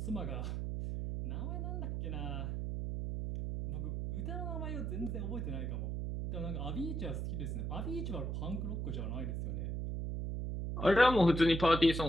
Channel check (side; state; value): right; noise; hum, 2 dB below the sound